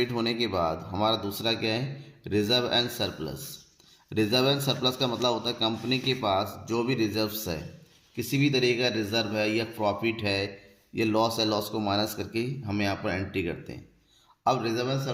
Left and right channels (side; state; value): both; identical; correlation 1.00